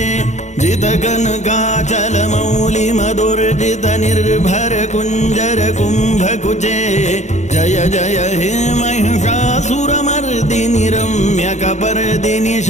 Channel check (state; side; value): late; right; 0.34 ms